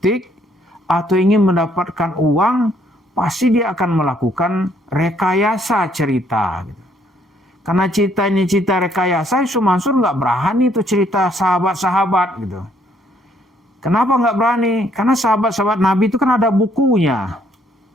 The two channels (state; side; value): normal; both; correlation 0.67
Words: atau ingin mendapatkan uang, pasti dia akan melakukan rekayasa cerita. Karena cerita ini cerita rekayasa, Yusuf Mansur nggak berani itu cerita sahabat-sahabat gitu. Kenapa nggak berani? Karena sahabat-sahabat Nabi itu kan ada bukunya.